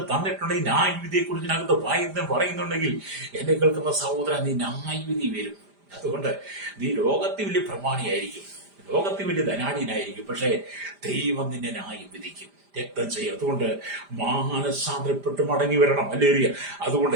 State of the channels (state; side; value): late; left; 5.0 ms